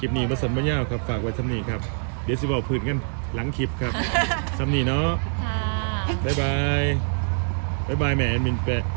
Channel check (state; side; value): silent; left; 58 dB below the other